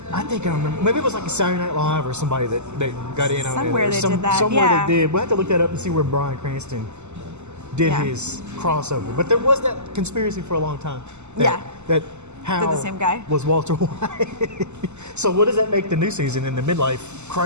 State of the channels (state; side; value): late; left; 0.83 ms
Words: I think I remember. Maybe it was like a Saturday Night Live or somebody that got in on it. Somewhere Or they did that, somewhere yeah. they did. We'll have to look that up and see where Bryan Cranston did Yeah. his crossover. But there was that conspiracy for a long time. Yeah. That Hal the same guy? was Walter White. So what does that make the new season in the midlife